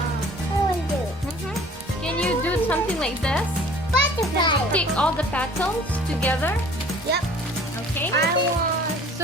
want to do Can you do something like this? butterfly. Stick all the petals together. Yep. Okay. I want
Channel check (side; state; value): both; normal; correlation 0.50